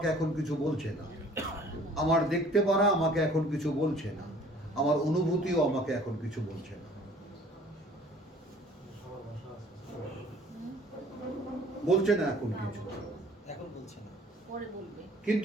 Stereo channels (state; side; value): normal; both; correlation 0.53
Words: এখন কিছু বলছে না, আমার দেখতে পারা আমাকে এখন কিছু বলছে না, আমার অনুভূতিও আমাকে এখন কিছু বলছে না। বলছে না এখন কিছু, এখন বলছে না, পরে বলবে।